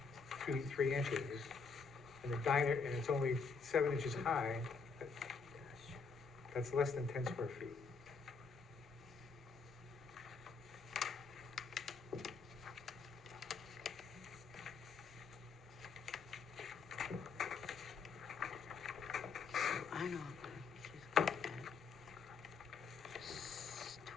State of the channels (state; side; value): quieter; right; 5.1 dB